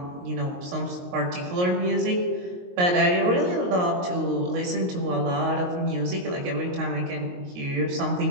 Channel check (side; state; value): left; late; 22 ms